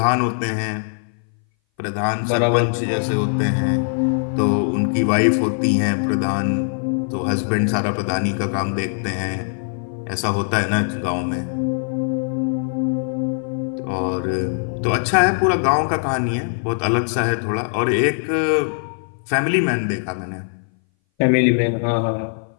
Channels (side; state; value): right; silent; 60 dB below the other